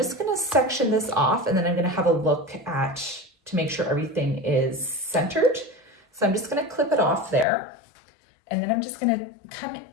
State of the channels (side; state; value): right; drops out; at 7.5 s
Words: gonna section this off, and then I'm gonna have a look to make sure everything is centered. So I'm just gonna clip it off there, and then I'm just gonna come